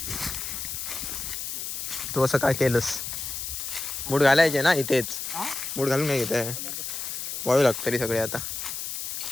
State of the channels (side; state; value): left; noise; hiss, 5 dB below the sound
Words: तू असं काय केलंस. मूड घालायचे ना इथेच. मूड घालून नाही घेत वाळू लागतं तरी सगळे. आता